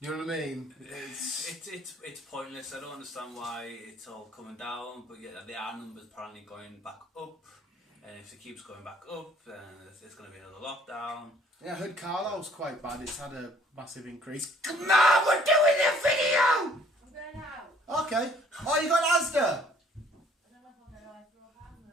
know what I mean? It's pointless. I don't understand why it's all coming down, but yeah, the R numbers apparently going back up. And if it keeps going back up, then it's going to be another lockdown. Yeah, I heard Carlisle's quite bad. It's had a massive increase. Come on, we're doing a video! I'm going out. Okay. Oh, you got Asda? I don't know if I'm going to throw a pan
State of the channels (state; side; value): normal; both; correlation 0.59